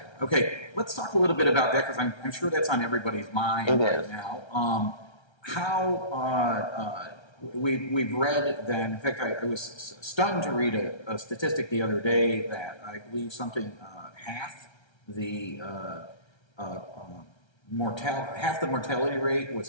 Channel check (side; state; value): right; late; 1.3 ms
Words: Okay, let's talk a little bit about that because I'm sure that's on everybody's mind right now. We've read that, in fact, I was stunned to read a statistic the other day that I believe half the mortality rate